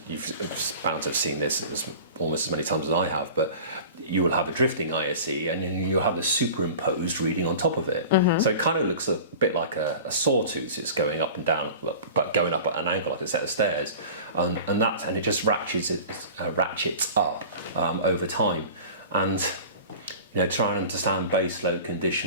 you've bound to have seen this almost as many times as I have, but you will have a drifting ISE and you'll have a superimposed reading on top of it. So it kind of looks a bit like a sawtooth. It's going up and down, but going up at an angle like a set of stairs, and it just ratchets up over time. And try and understand base load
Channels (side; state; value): both; inverted; correlation -0.39